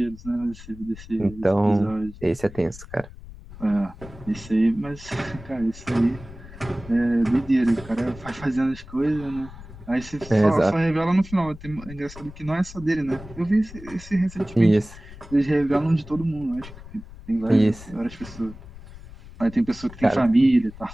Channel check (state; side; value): noise; left; rumble, 17 dB below the sound